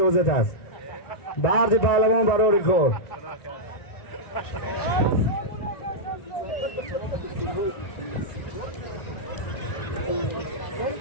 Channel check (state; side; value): late; right; 1.9 ms